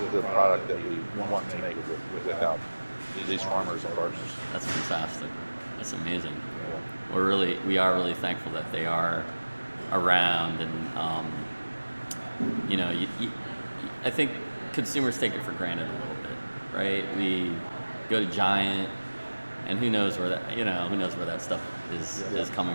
the product that we want to make without these farmers and partners. That's fantastic. That's amazing. We are really thankful that they are around, and I think consumers take it for granted a little bit, right? We go to Giant, and who knows where that stuff is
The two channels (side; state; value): both; inverted; correlation -1.00